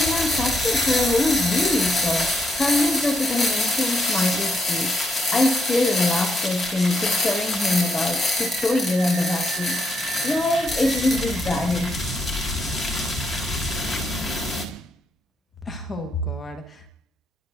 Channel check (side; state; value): both; normal; correlation 0.79